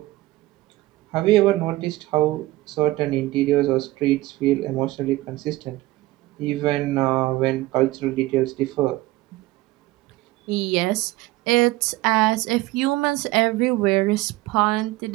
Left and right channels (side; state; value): left; quieter; 18.4 dB